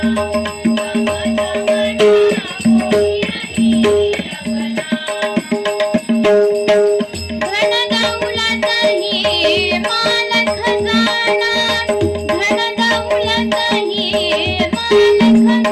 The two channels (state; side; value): identical; both; correlation 1.00